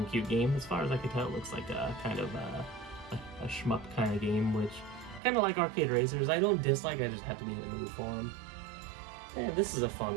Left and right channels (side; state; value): left; drops out; at 5.2 s